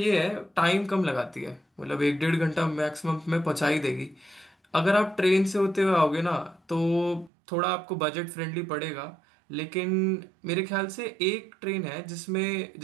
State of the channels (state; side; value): drops out; left; at 7.3 s